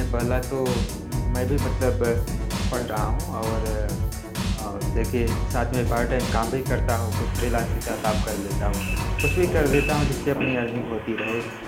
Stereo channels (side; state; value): both; identical; correlation 1.00